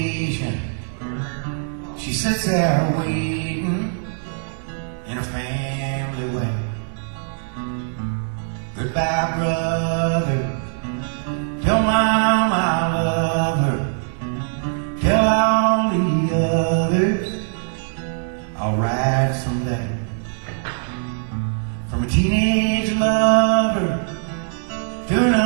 She sits there waiting in a family way. Goodbye, brother. Tell Mom I love her. Tell all the others I'll ride someday. From a teenage lover to an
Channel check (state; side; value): silent; left; 64 dB below the other